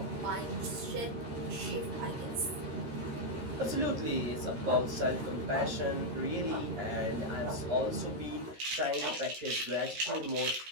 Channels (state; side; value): late; left; 13 ms